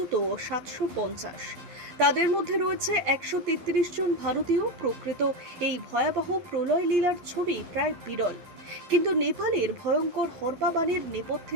750। তাদের মধ্যে রয়েছে 133 জন ভারতীয়। প্রকৃত এই ভয়াবহ প্রলয় লীলার ছবি প্রায় বিরল, কিন্তু নেপালের ভয়ঙ্কর হরপাবানের নেপথ্যে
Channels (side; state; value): left; late; 11 ms